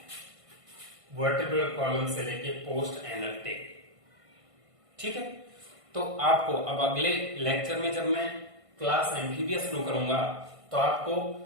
वर्टिब्रल कॉलम से लेके पोस्ट एनल टेल, ठीक है। तो आपको अब अगले लेक्चर में जब मैं क्लास एम्फीबिया शुरू करूंगा तो आपको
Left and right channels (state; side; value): late; left; 1.5 ms